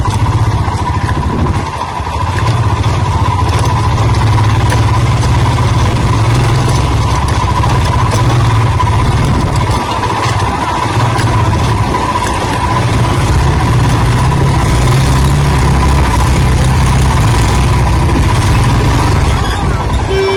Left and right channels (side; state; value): both; identical; correlation 1.00